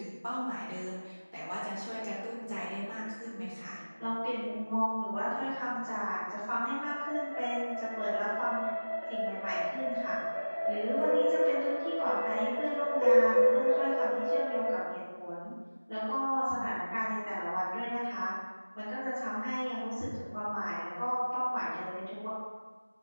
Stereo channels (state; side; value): inverted; both; correlation -1.00